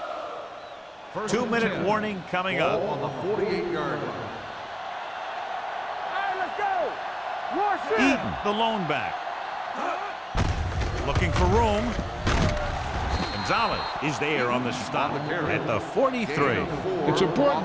First 2-minute warning coming up. On the 48-yard line. Hey, let's go. Rush it. Eaton, the lone back. Looking for room. Gonzalez is there on the stop at the 43. It's important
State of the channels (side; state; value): both; identical; correlation 1.00